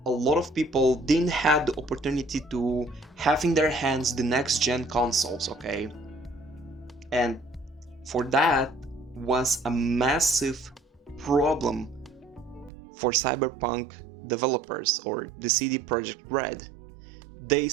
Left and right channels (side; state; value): left; drops out; at 12.7 s